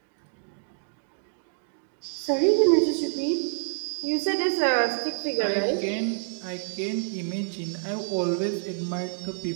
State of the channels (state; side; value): silent; left; digital silence